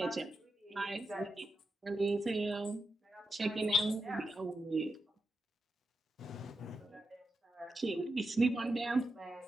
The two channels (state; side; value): normal; both; correlation 0.86